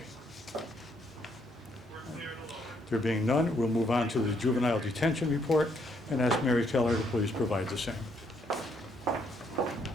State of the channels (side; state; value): both; normal; correlation 0.71